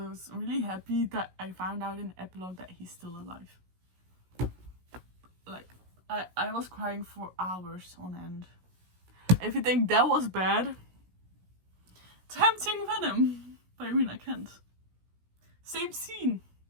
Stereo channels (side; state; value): left; late; 16 ms